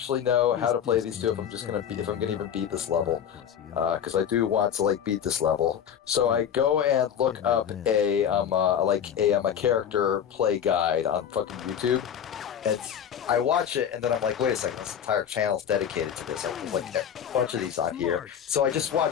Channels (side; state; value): right; quieter; 8.7 dB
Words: know how to play these 2 if I'm gonna even beat this level, because I do want to like beat this level. So I go and look up a character play guide on fucking YouTube, and I watch it, and then I'm like, wait a second, this entire channel's dedicated to this. There's like a bunch of these on here. So I just